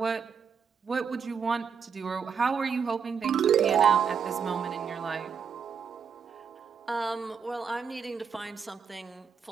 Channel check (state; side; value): quieter; left; 6.7 dB